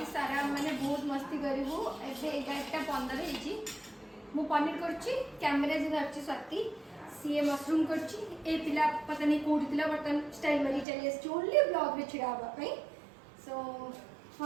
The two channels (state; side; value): drops out; left; at 10.9 s